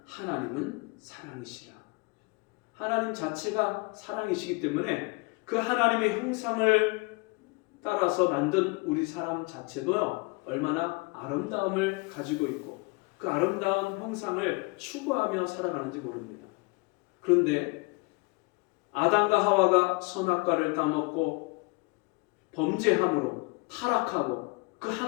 하나님은 사랑이시라. 하나님 자체가 사랑이시기 때문에 그 하나님의 형상을 따라서 만든 우리 사람 자체도요, 얼마나 아름다움을 가지고 있고 그 아름다운 형상을 추구하며 살아가는지 모릅니다. 그런데 아담과 하와가 선악과를 따먹고 범죄함으로 타락하고 그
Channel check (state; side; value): quieter; right; 27.5 dB